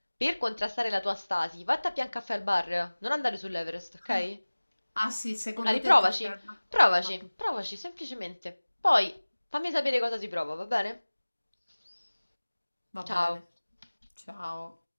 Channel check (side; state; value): both; inverted; correlation -1.00